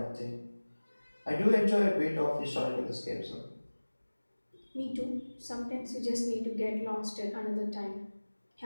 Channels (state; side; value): inverted; both; correlation -1.00